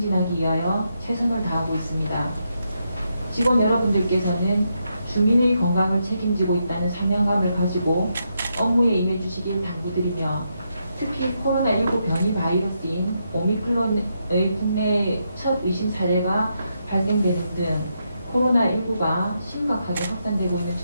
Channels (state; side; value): inverted; both; correlation -0.81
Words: 위하여 최선을 다하고 있습니다. 직원 여러분들께서는 주민의 건강을 책임지고 있다는 사명감을 가지고 업무에 임해 주시길 당부드리며 특히 코로나19 변이 바이러스인 오미크론의 국내 첫 의심 사례가 발생되는 등 코로나19가 심각하게 확산되고 있는